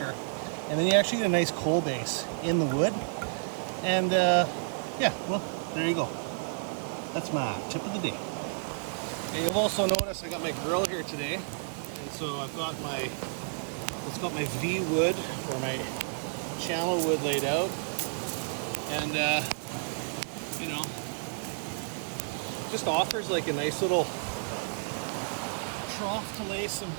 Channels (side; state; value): left; silent; digital silence